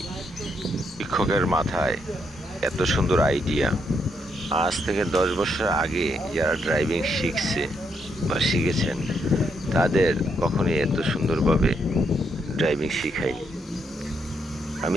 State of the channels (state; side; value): normal; both; correlation 0.77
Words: শিক্ষকের মাথায় এত সুন্দর আইডিয়া। আজ থেকে 10 বছর আগে যারা ড্রাইভিং শিখছে বা শিখেছেন তাদের কখনোই এত সুন্দরভাবে ড্রাইভিং শিখায়নি।